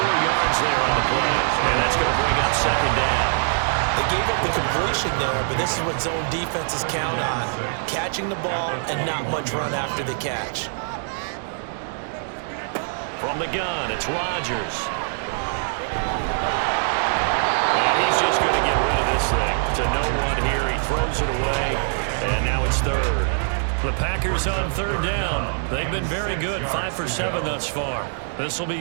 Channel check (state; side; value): silent; left; digital silence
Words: yards there on the play. And that's going to bring up 2nd down. They gave up the completion there, but this is what zone defenses count on. Catching the ball and not much run after the catch. From the gun, it's Rodgers. And he's just going to get rid of this thing. To no one here, he throws it away, and now it's 3rd. The Packers on third down. They've been very good, 5 for 7 thus far. This will